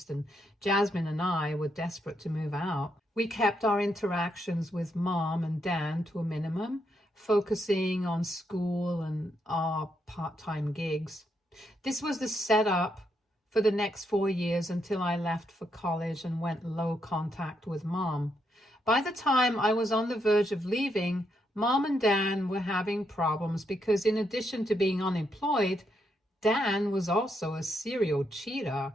and Jasmine and I were desperate to move out. We kept our interactions with Mom and Dan to a minimum, focusing on school and our part-time gigs. This was the setup for the next 4 years until I left for college and went low contact with Mom. By the time I was on the verge of leaving, Mom and Dan were having problems because in addition to being unemployed, Dan was also a serial cheater,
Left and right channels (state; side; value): normal; both; correlation 0.79